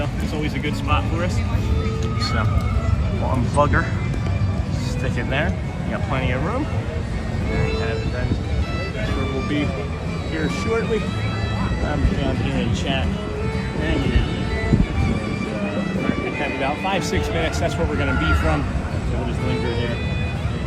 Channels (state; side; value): identical; both; correlation 1.00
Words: it's always a good spot for us. So we'll unplug her, stick it there. You got plenty of room. There you have it, friends. Sure we'll be here shortly. I'm down here in chat. And we have about 5-6 minutes. That's where we're going to be from. So we'll just linger here